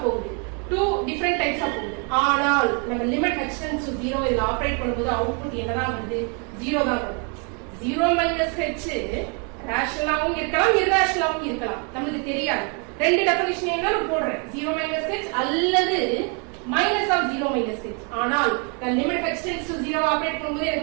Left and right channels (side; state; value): left; quieter; 36.3 dB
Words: போகுது, two different types ஆ போகுது. ஆனால் நம்ம லிமிட் h tends to 0 இத ஆபரேட் பண்ணும்போது அவுட்புட் என்னதான் வருது? 0 தான் வரும். 0 minus h ரேஷனலாவும் இருக்கலாம் irrationalவும் இருக்கலாம் நமக்கு தெரியாது ரெண்டு டெஃபினிஷன் என்ன நான் போடுறேன் 0 minus h அல்லது minus of 0 minus h ஆனால் நான் limit h tends to 0 operate பண்ணும்போது